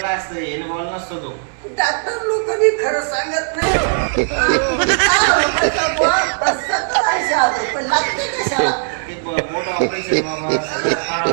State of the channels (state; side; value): silent; left; digital silence